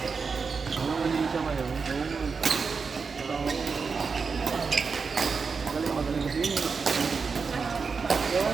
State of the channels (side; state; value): left; quieter; 5.1 dB